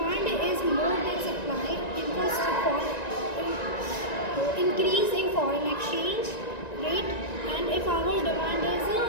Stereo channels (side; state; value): right; late; 1.9 ms